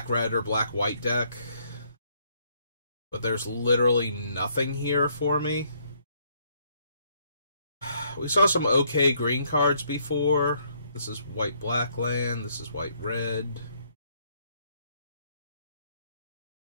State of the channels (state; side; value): inverted; both; correlation -0.69